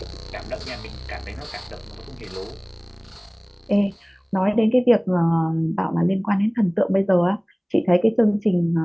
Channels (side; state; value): both; identical; correlation 1.00